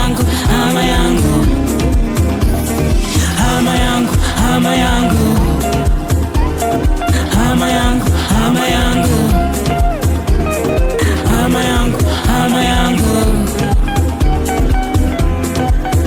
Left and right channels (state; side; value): identical; both; correlation 1.00